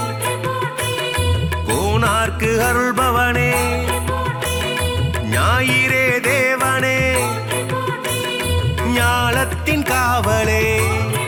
கோனார்க்கு அருள்பவனே ஞாயிறே தேவனே ஞாலத்தின் காவலே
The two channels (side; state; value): both; identical; correlation 1.00